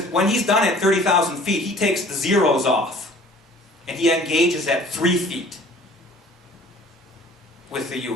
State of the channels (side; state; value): both; normal; correlation 0.50